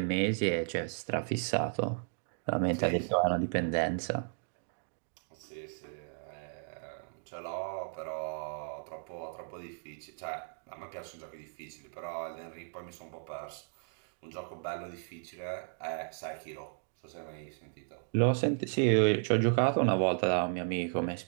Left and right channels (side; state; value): left; silent; digital silence